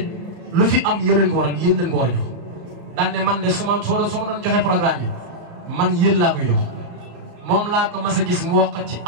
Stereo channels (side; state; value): left; late; 34 ms